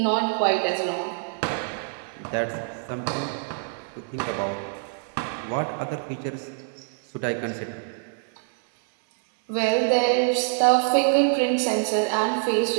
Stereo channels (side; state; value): left; silent; digital silence